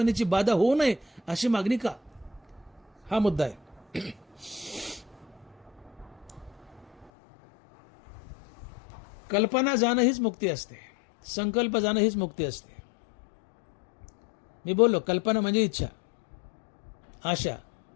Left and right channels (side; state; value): right; drops out; at 7.1 s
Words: बाधा होऊ नये अशी मागणी का? हा मुद्दा आहे. कल्पना जाणं हीच मुक्ती असते, संकल्प जाणं हीच मुक्ती असते. मी बोललो कल्पना म्हणजे इच्छा, आशा,